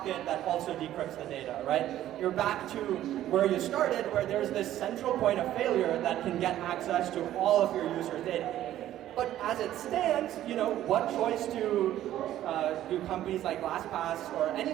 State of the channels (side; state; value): left; quieter; 12.8 dB